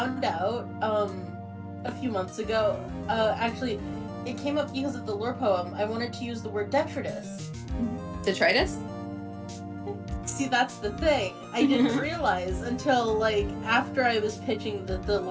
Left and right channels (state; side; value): identical; both; correlation 1.00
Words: out a few months ago. Actually, it came up because of the lore poem. I wanted to use the word detritus. Detritus? See, that's the thing. I didn't realize until like after I was pitching the